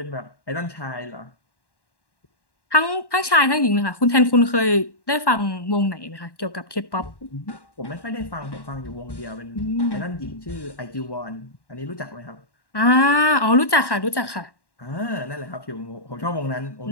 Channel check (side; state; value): right; late; 1.1 ms